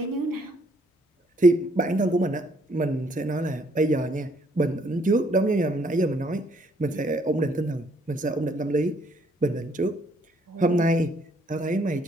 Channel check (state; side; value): normal; both; correlation 0.67